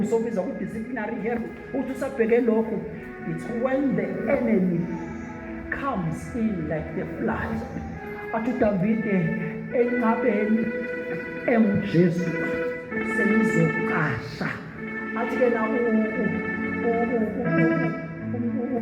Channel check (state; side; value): identical; both; correlation 1.00